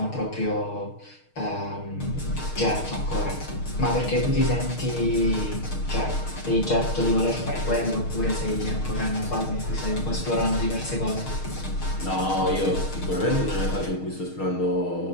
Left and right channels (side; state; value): right; late; 6.5 ms